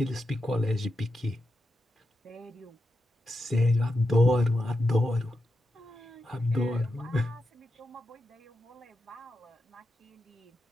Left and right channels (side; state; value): both; normal; correlation 0.88